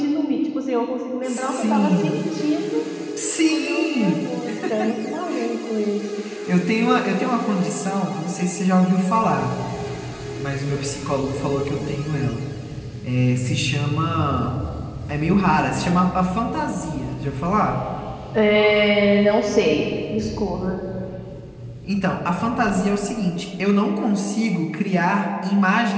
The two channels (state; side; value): identical; both; correlation 1.00